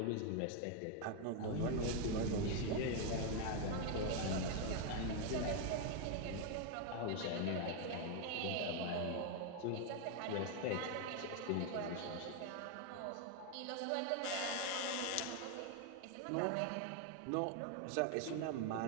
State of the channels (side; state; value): both; different; correlation 0.01